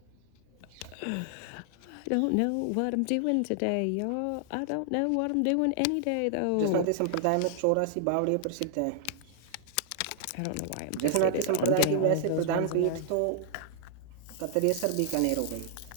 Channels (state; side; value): different; both; correlation -0.01